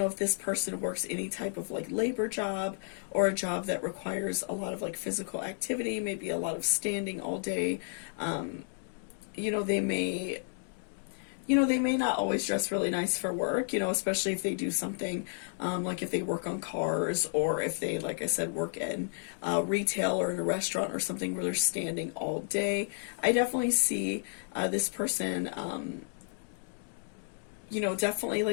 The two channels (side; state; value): right; silent; digital silence